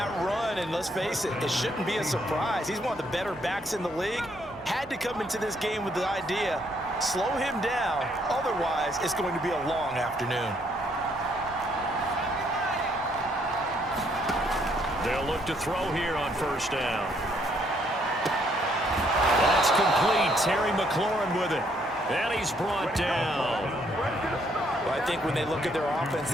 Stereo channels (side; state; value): right; noise; hum, 26 dB below the sound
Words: run, and let's face it, it shouldn't be a surprise. He's one of the better backs in the league. Had to come into this game with the idea, slow him down, otherwise it's going to be a long afternoon. They'll look to throw here on first down. That's complete. Terry McLaurin with it. And he's brought down. Well, I think when they look at their offense,